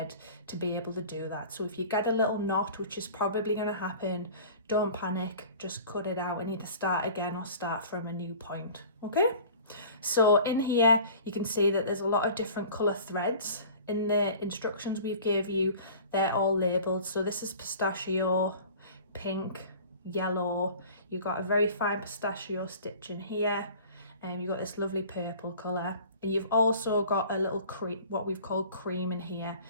to be able to do that. So if you get a little knot, which is probably going to happen, don't panic, just cut it out and either start again or start from a new point. Okay, so in here you can see that there's a lot of different colour threads. In the instructions we've gave you, they're all labelled. So this is pistachio, pink, yellow. You've got a very fine pistachio stitch in here, and you've got this lovely purple colour. And you've also got a little cream, what we've called cream in here,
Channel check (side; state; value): both; inverted; correlation -0.44